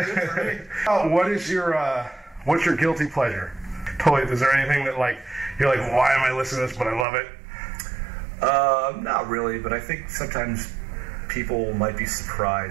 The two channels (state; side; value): drops out; left; at 7.1 s